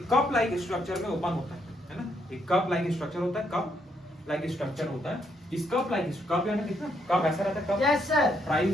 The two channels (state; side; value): normal; both; correlation 0.74